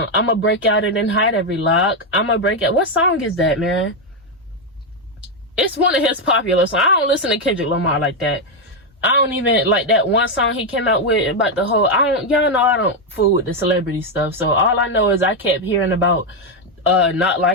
I'ma break out and then hide every lock. I'ma break out. What song is that, man? It's one of his popular songs. I don't listen to Kendrick Lamar like that. I don't even like that one song he came out with about the whole, y'all know I don't fool with the celebrity stuff. So all I know is I kept hearing about not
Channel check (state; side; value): normal; both; correlation 0.04